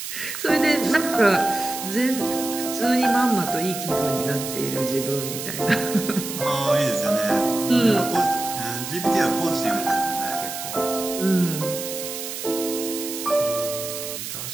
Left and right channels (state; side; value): noise; right; hiss, 7 dB below the sound